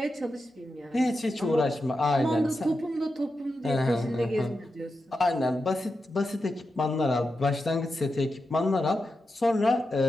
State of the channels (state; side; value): normal; both; correlation 0.89